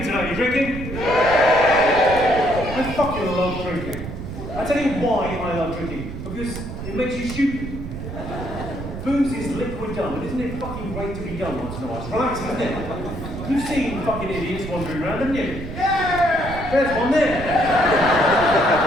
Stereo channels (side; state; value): right; noise; rumble, 8 dB below the sound